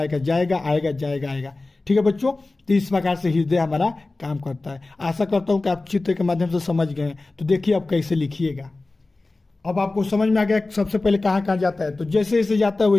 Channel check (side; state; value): right; quieter; 3.2 dB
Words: जाएगा आएगा, जाएगा आएगा। ठीक है बच्चों, तो इस प्रकार से हृदय हमारा काम करता है। आशा करता हूँ कि आप चित्र के माध्यम से समझ गए हैं। तो देखिए अब कैसे लिखिएगा। अब आपको समझ में आ गया सबसे पहले कहाँ कहाँ जाता है, तो जैसे जैसे जाता है